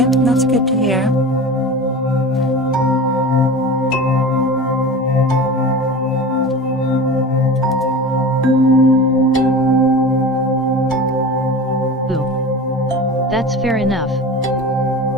That's good to hear. Ooh. That's fair enough.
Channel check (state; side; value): normal; both; correlation 0.33